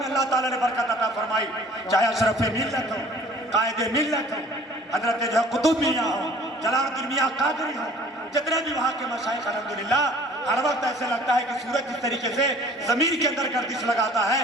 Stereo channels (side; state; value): both; normal; correlation 0.51